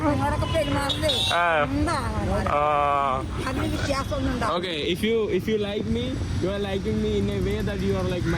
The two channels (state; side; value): identical; both; correlation 1.00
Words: നിങ്ങളൊക്കെ പെരുമാറുന്നേ ആ. സ്വന്തം ആങ്ങളമാരെ. അതിന് വ്യത്യാസമൊന്നും ഉണ്ടാവും. Okay, if you like me, you are liking me in a way that you are like